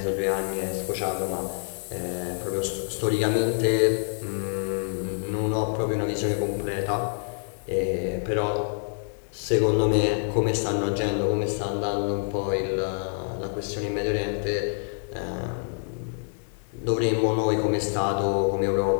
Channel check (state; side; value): silent; right; 60 dB below the other